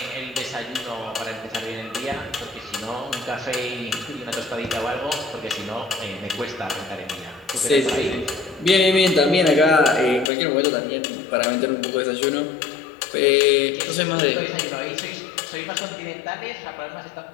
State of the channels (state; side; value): drops out; right; at 10.3 s